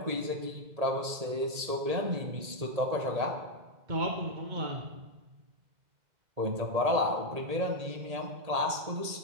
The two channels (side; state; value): left; late; 1.8 ms